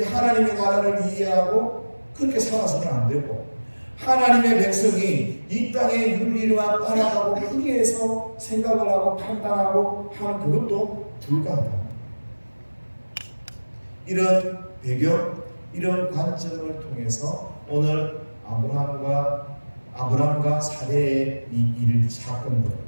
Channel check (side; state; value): both; inverted; correlation -1.00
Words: 하나님의 나라를 이해하고 그렇게 살아서는 안 되고 하나님의 백성이 이 땅의 윤리와 따라가고 거기에서 생각을 하고 판단하고 하는 그것도 불가하다. 이런 배경, 이런 관점을 통해서 오늘 아브람과 사례의 이 사건들